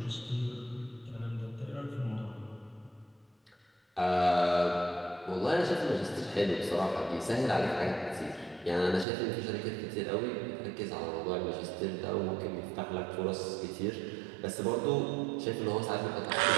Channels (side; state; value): left; drops out; at 9.1 s